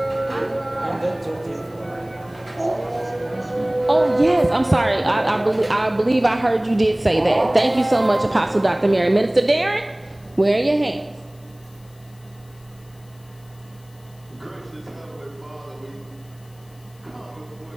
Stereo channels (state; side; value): noise; left; hiss, 30 dB below the sound